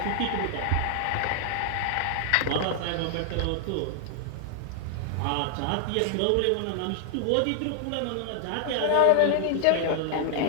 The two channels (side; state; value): both; different; correlation 0.00